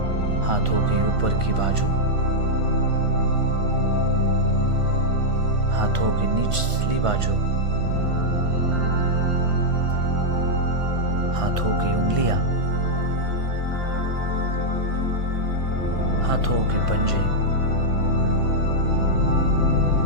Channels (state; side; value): late; left; 1.5 ms